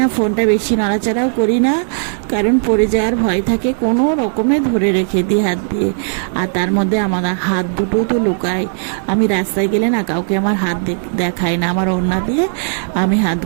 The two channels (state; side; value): silent; left; digital silence